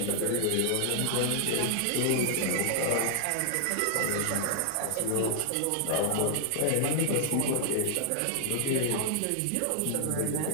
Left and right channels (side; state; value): both; different; correlation 0.00